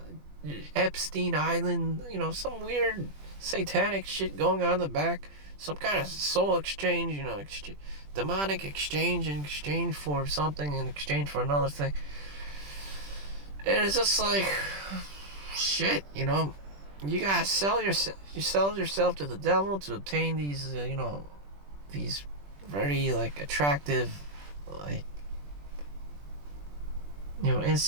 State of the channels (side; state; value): left; late; 20 ms